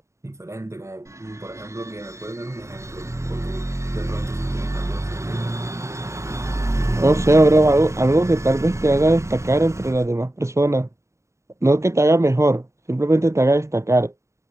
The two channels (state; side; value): late; left; 0.14 ms